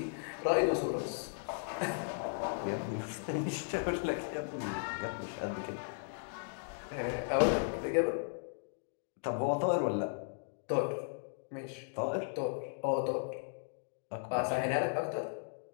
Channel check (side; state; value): right; silent; digital silence